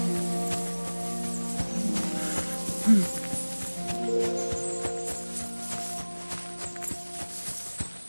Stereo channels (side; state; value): both; inverted; correlation -1.00